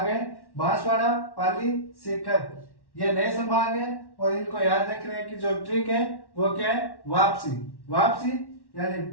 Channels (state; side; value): late; right; 1.1 ms